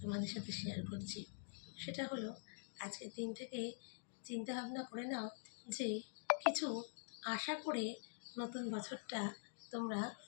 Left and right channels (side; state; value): right; silent; digital silence